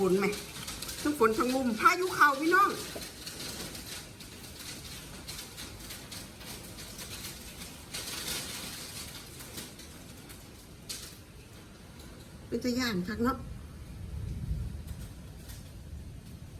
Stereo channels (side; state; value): both; identical; correlation 1.00